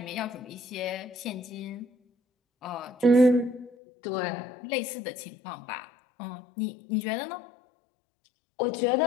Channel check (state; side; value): drops out; right; at 3.8 s